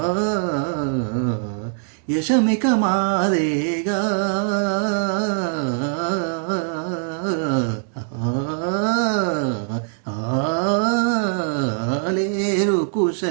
యశమిక మాదేగా. లేరు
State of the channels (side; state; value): left; silent; digital silence